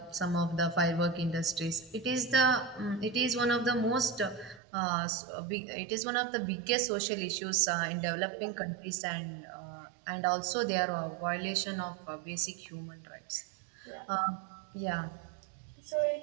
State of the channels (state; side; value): drops out; left; at 4.6 s